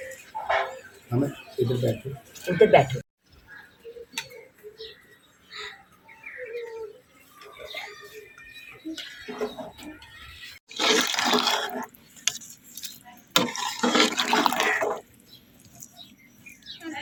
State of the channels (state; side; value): identical; both; correlation 1.00